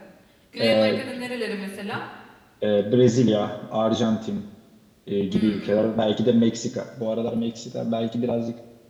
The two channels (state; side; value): identical; both; correlation 1.00